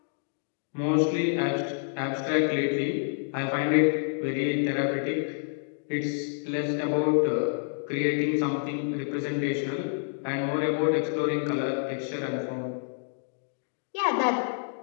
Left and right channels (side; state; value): right; silent; digital silence